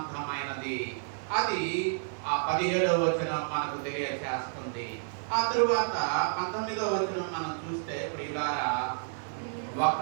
అది ఆ 17వ వచనం మనకు తెలియజేస్తుంది. ఆ తరువాత 19వ వచనం మనం చూస్తే, ప్రియులారా, ఒక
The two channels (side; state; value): left; silent; digital silence